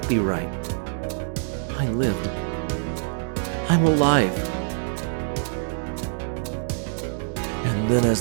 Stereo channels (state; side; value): silent; left; digital silence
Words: be right. I lived. I'm alive. And then as